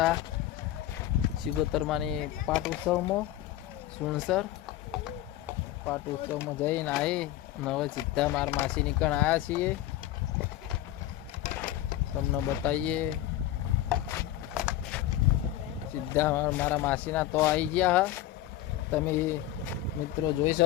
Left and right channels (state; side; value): quieter; right; 13.5 dB